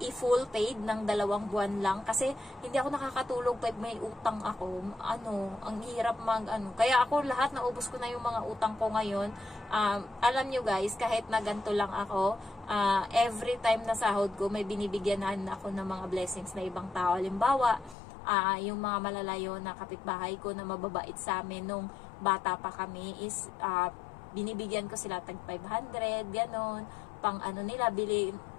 i-full paid ng 2 buwan lang. Kasi hindi ako nakakatulog pag may utang ako. Ang hirap Kaya ako, lahat naubos ko na yung mga utang ko ngayon. Alam nyo guys, kahit na ganito lang ako, every time na sahod ko, may binibigyanan ako ng mga blessings na ibang tao. Halimbawa, yung mga malalayo na kapitbahay ko na mababait sa amin nung bata pa kami is binibigyan ko sila tag 500, ganon, pang nila,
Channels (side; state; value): right; drops out; at 17.9 s